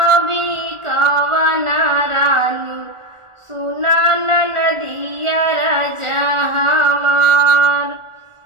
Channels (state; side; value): late; left; 1.4 ms